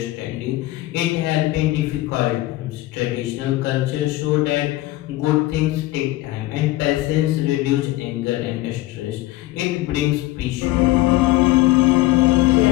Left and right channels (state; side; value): quieter; right; 17.4 dB